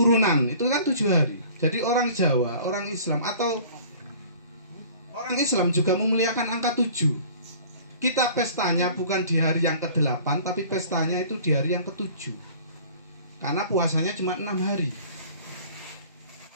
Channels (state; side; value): inverted; both; correlation -0.47